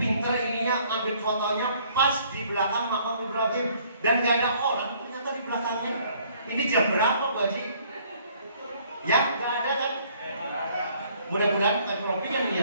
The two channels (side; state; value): both; inverted; correlation -0.61